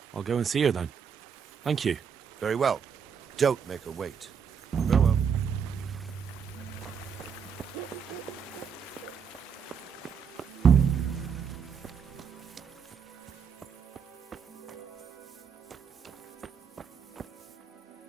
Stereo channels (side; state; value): left; quieter; 6.8 dB